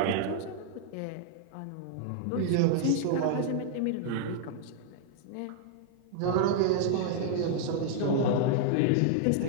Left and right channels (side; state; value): both; different; correlation -0.01